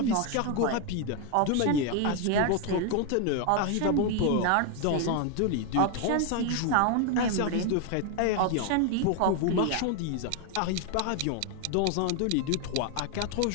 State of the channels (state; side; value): different; both; correlation 0.01